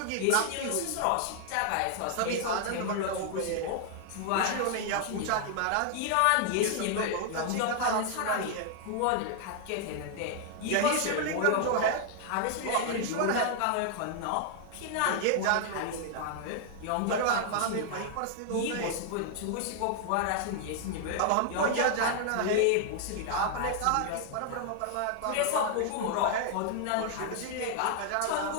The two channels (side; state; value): both; different; correlation 0.00